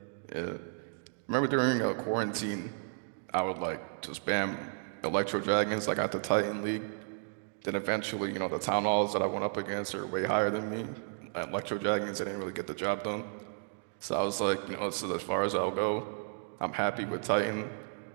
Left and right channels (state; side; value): silent; left; 56 dB below the other